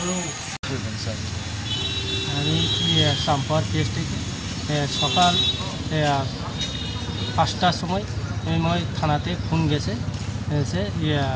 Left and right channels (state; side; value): identical; both; correlation 1.00